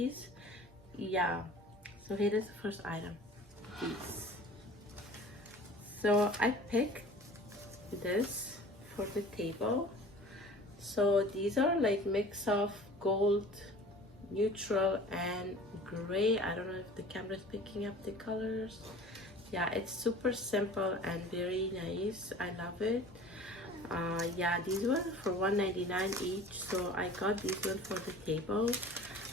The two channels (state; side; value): normal; both; correlation 0.44